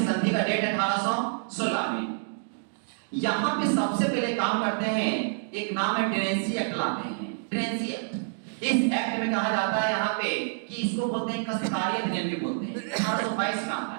संधि का डेट 1816 में, यहाँ पे सबसे पहले काम करते हैं, एक नाम है टेनेंसी एक्ट लाते हैं। टेनेंसी एक्ट, इस एक्ट में कहा जाता है यहाँ पे कि इसको बोलते हैं कष्टकारी अधिनियम भी बोलते हैं। 1822 में आता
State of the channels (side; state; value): left; silent; digital silence